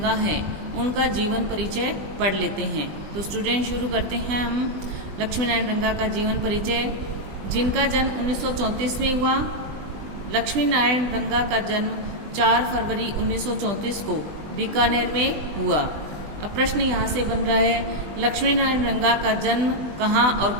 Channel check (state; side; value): late; left; 20 ms